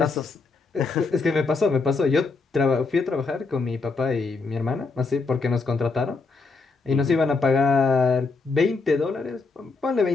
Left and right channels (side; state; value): right; quieter; 4.1 dB